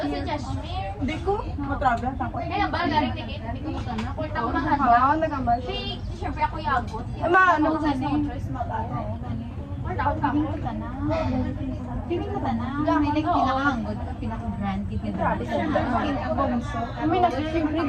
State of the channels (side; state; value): both; identical; correlation 1.00